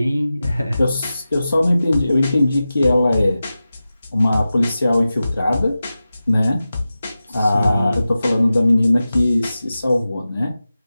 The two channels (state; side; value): inverted; both; correlation -0.94